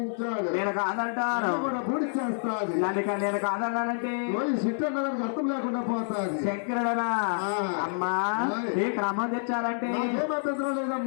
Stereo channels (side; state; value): right; silent; 59 dB below the other